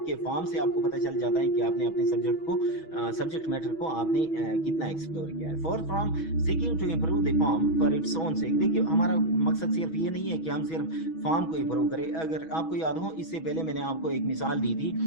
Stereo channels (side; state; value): right; late; 6.2 ms